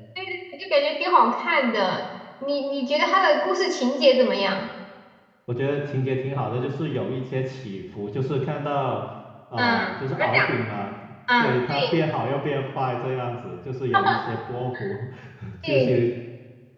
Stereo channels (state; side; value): identical; both; correlation 1.00